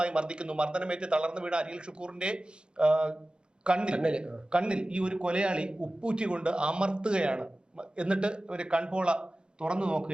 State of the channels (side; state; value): left; late; 0.050 ms